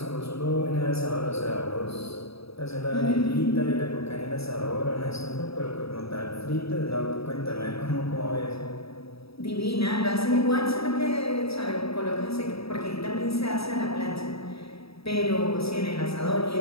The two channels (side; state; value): right; late; 0.77 ms